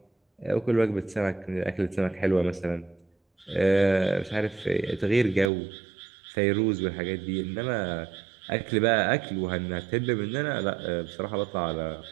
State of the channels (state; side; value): drops out; left; at 5.5 s